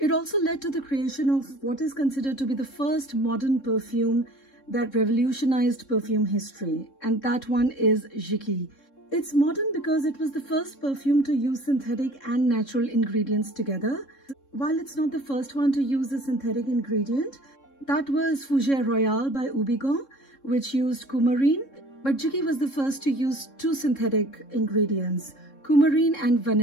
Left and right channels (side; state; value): right; late; 3.7 ms